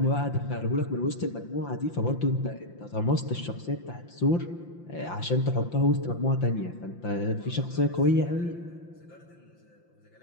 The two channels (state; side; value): late; right; 5.8 ms